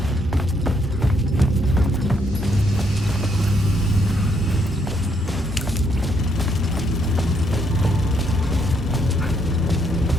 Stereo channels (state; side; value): normal; both; correlation 0.73